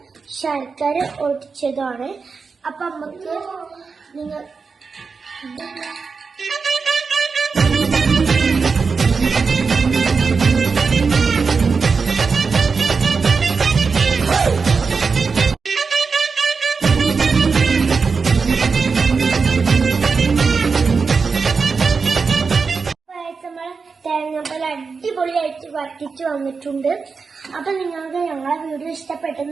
ശർക്കര ഒടിച്ചതാണ്. അപ്പൊ നമുക്ക് നിങ്ങൾ തേങ്ങാപ്പാൽ അടിപൊളിയായിട്ട് വറ്റിച്ച് വന്നിട്ടുണ്ട്. അപ്പൊ നിങ്ങൾക്ക് ഞങ്ങളെ വീഡിയോ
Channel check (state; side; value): quieter; left; 4.9 dB